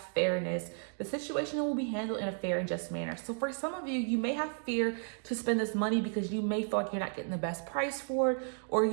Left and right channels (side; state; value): left; silent; 56 dB below the other